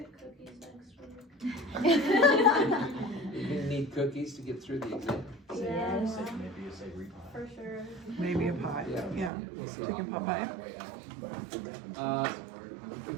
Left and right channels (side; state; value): left; drops out; at 9.3 s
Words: cookies next week? You're gonna need cookies to get through the exam. Yeah, Maybe a savory pie. for sure. Maybe a pie, yeah. We'll see. Chicken pot pie.